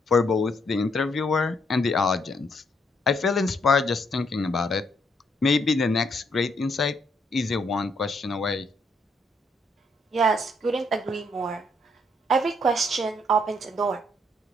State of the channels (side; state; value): both; normal; correlation 0.73